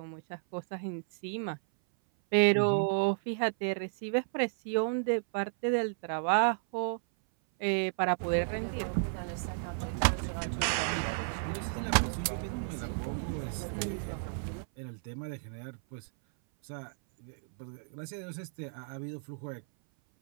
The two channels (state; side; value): silent; left; 56 dB below the other